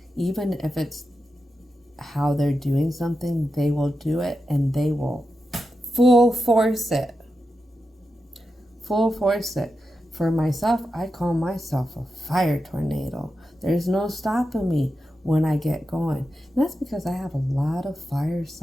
even if it's how they're doing something, they will do it, and they will full force it. Full force it. For myself, I call myself a fire tornado. There's no stopping me when I get going. And that's because I have a lot of fire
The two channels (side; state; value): both; normal; correlation 0.89